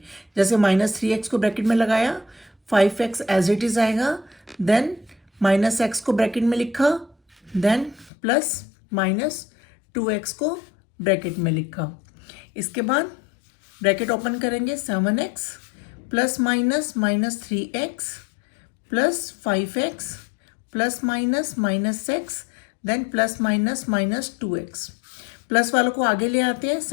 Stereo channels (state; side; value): drops out; right; at 8.1 s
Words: जैसे -3x को ब्रैकेट में लगाया, 5x एज इट इज आएगा, देन -x को ब्रैकेट में लिखा, देन प्लस -2x को ब्रैकेट में लिखा। इसके बाद ब्रैकेट ओपन करेंगे। 7x plus -3x plus 5x plus -x then plus -2x। Plus वालों को आगे ले आते हैं।